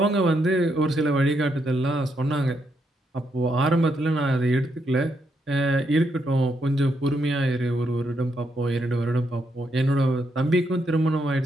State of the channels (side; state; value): both; normal; correlation 0.78